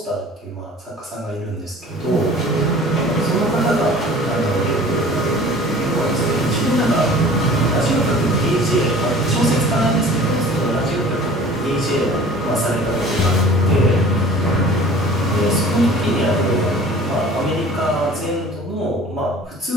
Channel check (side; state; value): both; normal; correlation 0.45